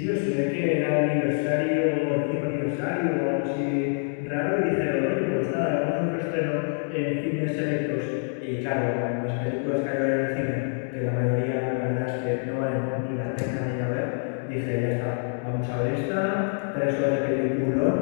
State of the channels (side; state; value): right; silent; 58 dB below the other